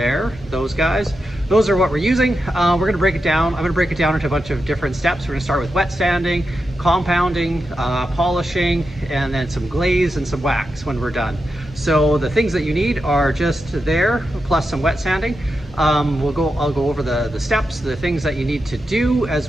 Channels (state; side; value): normal; both; correlation 0.88